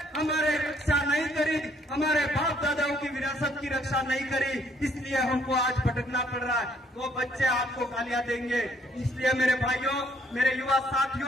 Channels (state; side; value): normal; both; correlation 0.66